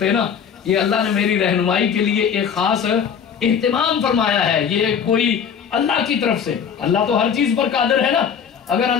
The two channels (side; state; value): right; quieter; 7.4 dB